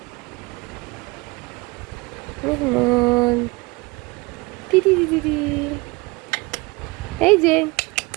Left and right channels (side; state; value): left; quieter; 24.9 dB